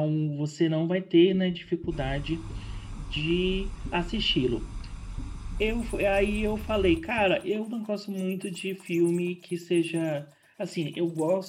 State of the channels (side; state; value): both; identical; correlation 1.00